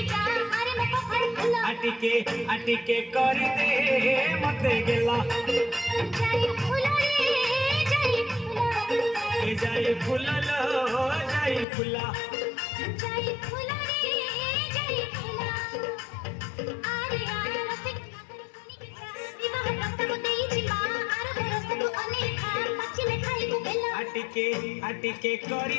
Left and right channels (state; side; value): drops out; right; at 11.7 s